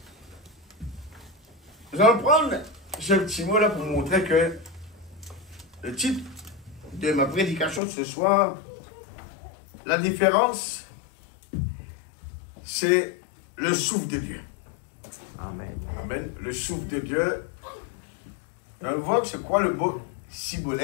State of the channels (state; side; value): drops out; right; at 7.8 s